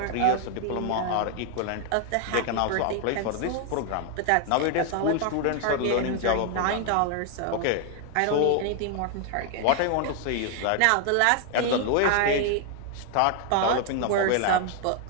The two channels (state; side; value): different; both; correlation 0.00